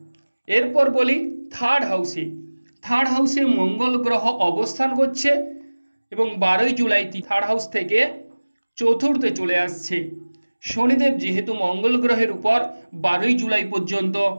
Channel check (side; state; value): both; inverted; correlation -1.00